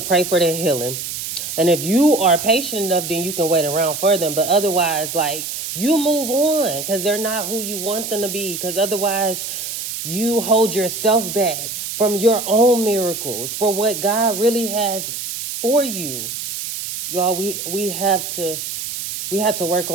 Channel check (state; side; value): noise; right; hiss, 6 dB below the sound